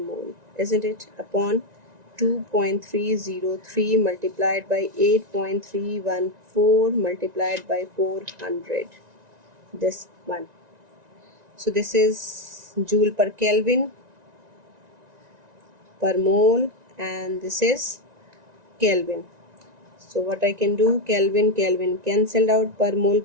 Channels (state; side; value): late; left; 1.9 ms